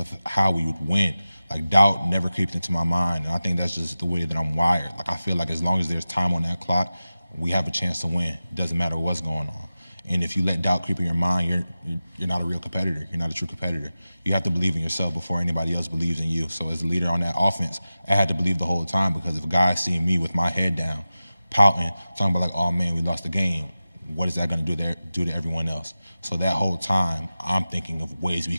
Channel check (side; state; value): both; inverted; correlation -0.95